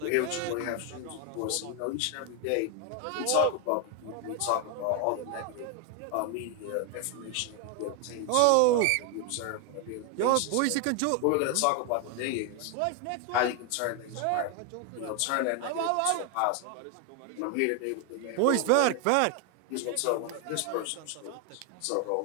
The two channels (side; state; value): both; different; correlation 0.01